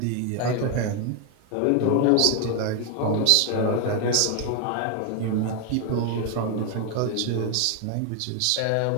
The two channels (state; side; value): different; both; correlation 0.01